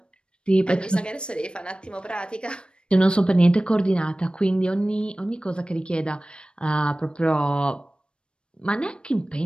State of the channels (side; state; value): right; late; 0.054 ms